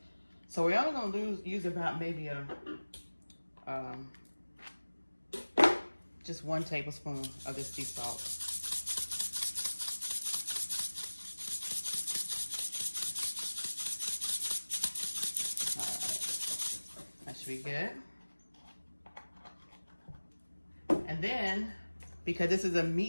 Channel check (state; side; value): inverted; both; correlation -1.00